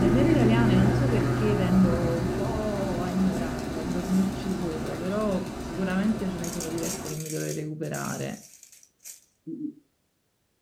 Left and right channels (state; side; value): identical; both; correlation 1.00